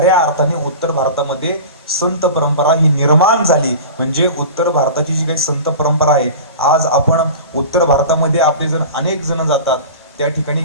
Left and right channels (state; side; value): inverted; both; correlation -0.34